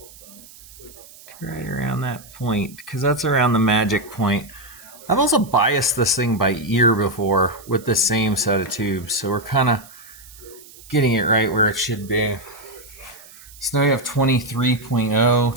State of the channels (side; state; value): right; noise; hiss, 21 dB below the sound